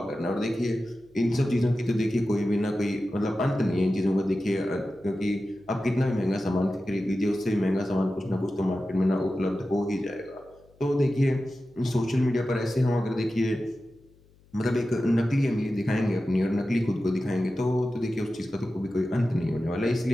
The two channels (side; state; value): left; noise; hum, 30 dB below the sound